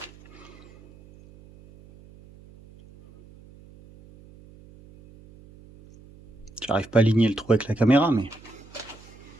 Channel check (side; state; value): right; noise; hum, 23 dB below the sound